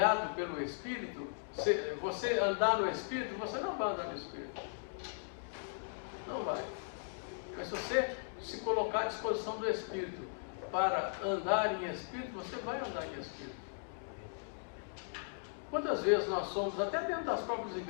pelo Espírito, você andar no Espírito, você não vai andar no Espírito. Não vai. Mas se você se colocar à disposição do Espírito para andar em Espírito, você vai andar em Espírito. Quantas vezes nós somos, até dentro das próprias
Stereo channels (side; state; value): right; silent; digital silence